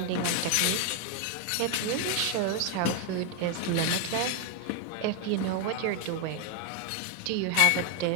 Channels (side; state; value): both; different; correlation 0.01